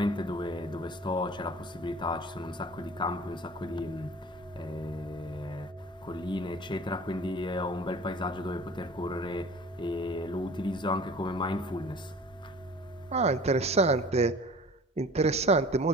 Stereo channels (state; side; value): normal; both; correlation 0.44